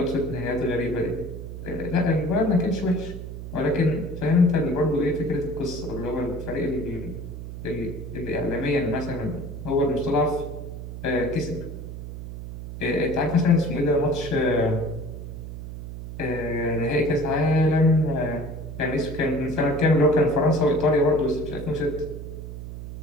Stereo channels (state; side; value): noise; right; hum, 9 dB below the sound